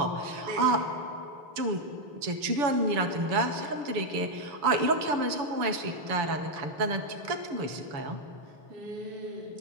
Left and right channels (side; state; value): left; late; 7.0 ms